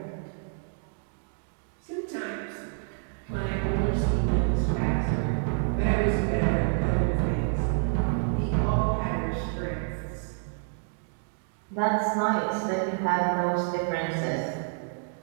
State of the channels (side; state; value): left; silent; 59 dB below the other